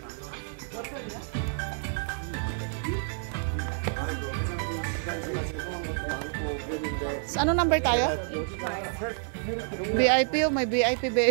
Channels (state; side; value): silent; left; 59 dB below the other